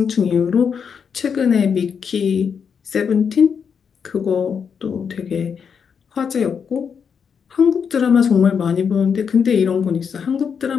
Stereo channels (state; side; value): quieter; right; 6.7 dB